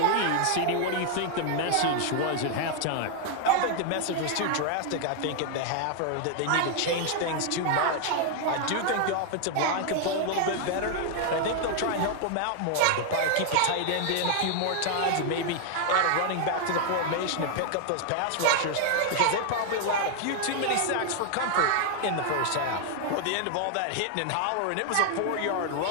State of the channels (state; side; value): different; both; correlation 0.00